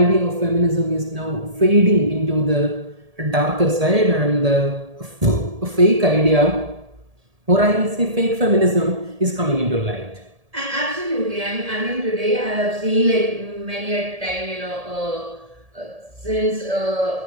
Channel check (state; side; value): late; left; 1.7 ms